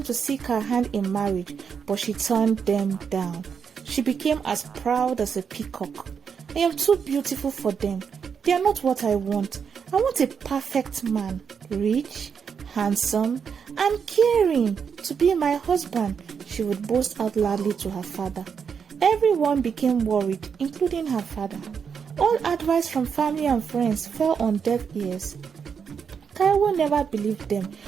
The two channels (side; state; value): left; quieter; 6.6 dB